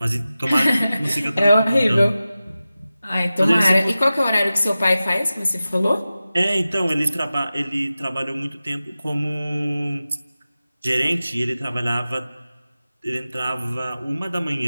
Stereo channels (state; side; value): inverted; both; correlation -0.95